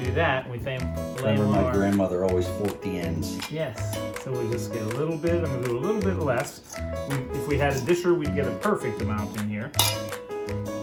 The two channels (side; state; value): both; identical; correlation 1.00